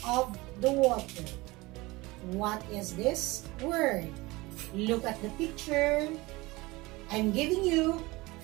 of the water. What is this word? Look at the picture. I'm giving you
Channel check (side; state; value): left; quieter; 21.8 dB